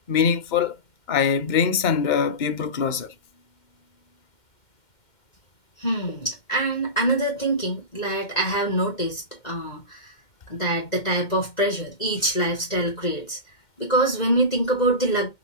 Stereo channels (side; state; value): right; late; 2.1 ms